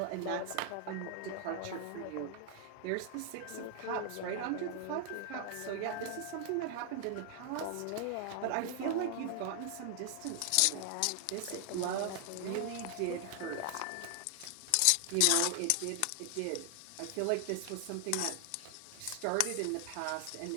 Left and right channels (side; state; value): both; different; correlation 0.00